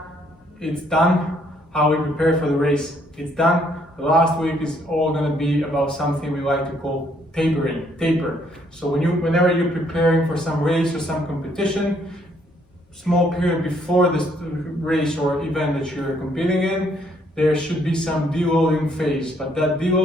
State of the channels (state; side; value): normal; both; correlation 0.68